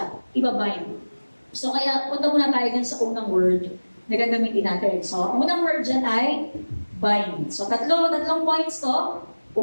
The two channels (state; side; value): inverted; both; correlation -1.00